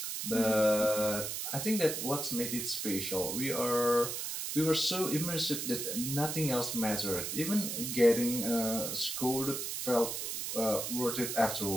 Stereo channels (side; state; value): right; noise; hiss, 4 dB below the sound